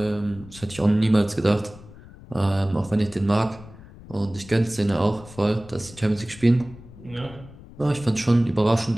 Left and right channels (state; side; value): noise; left; rumble, 19 dB below the sound